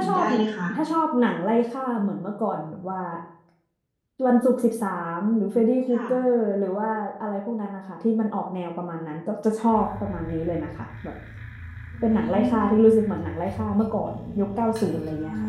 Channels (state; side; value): identical; both; correlation 1.00